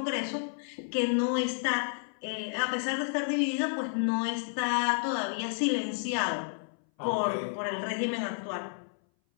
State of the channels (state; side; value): silent; right; 57 dB below the other